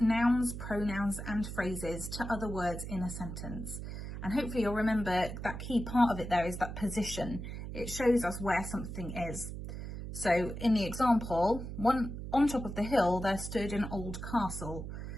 pronouns and phrases to other words in a sentence. And hopefully you'll remember that key part of it there is that position. It shows us where something is. So in the example, on top of the hill there stood an old castle.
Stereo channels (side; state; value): right; noise; hum, 7 dB below the sound